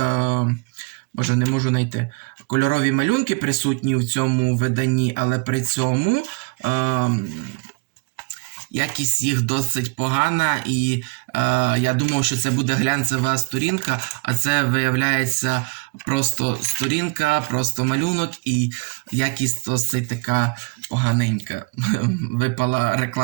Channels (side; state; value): left; quieter; 29.5 dB